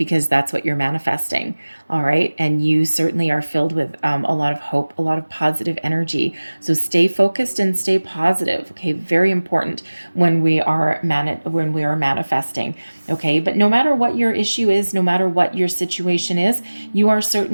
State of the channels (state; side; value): inverted; both; correlation -1.00